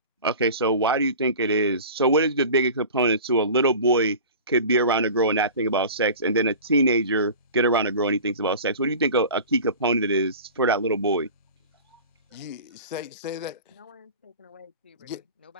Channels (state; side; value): inverted; both; correlation -0.37